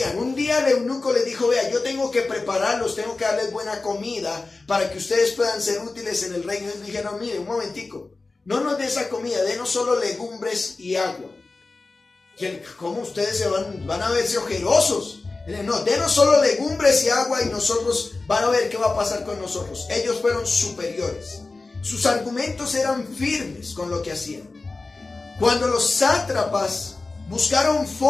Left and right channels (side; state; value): right; quieter; 3.6 dB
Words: Un día el eunuco le dijo, vea, yo tengo que prepararlos, tengo que darles buena comida para que ustedes puedan ser útiles en el reino. Y dijeron, mire, un momentico, no nos dé esa comida, denos solo legumbres y agua. ¿Cómo ustedes van a verse ojerosos? No, denos solo legumbres y agua y nosotros van a ver qué va a pasar con nosotros. Ellos fueron superiores. Sus argumentos eran firmes con lo que hacían. Cuando los sátrapas buscaron